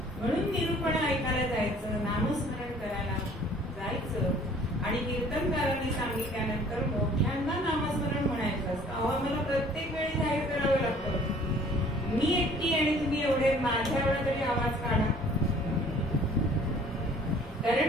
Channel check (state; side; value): normal; both; correlation 0.54